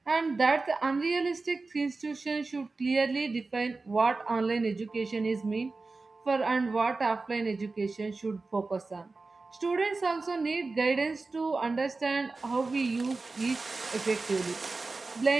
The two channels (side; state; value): left; quieter; 3.7 dB